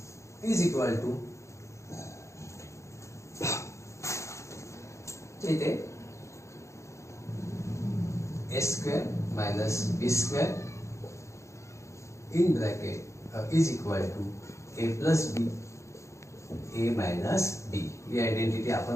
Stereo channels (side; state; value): right; late; 0.14 ms